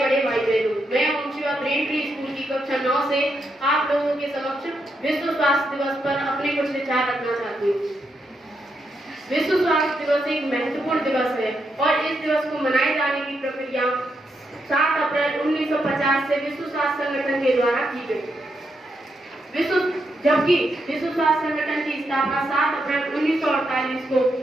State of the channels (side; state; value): both; normal; correlation 0.82